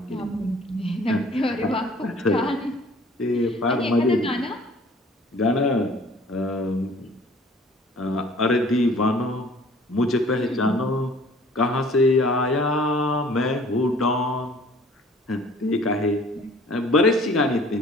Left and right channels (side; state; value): both; normal; correlation 0.52